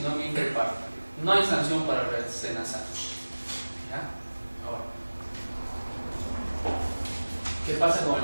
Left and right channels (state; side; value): inverted; both; correlation -1.00